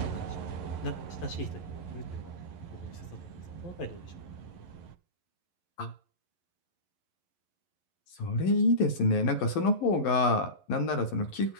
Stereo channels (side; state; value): right; late; 11 ms